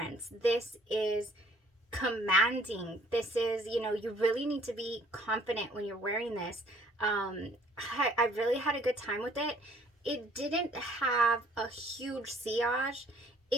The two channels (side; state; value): both; normal; correlation 0.58